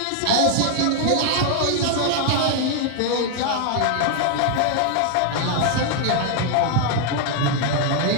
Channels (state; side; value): different; both; correlation 0.00